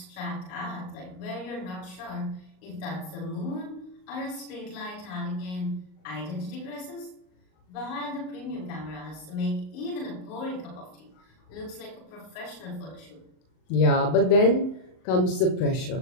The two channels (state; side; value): late; right; 38 ms